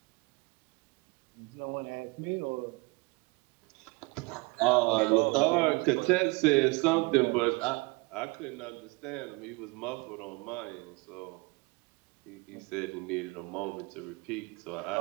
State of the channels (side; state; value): left; quieter; 26.8 dB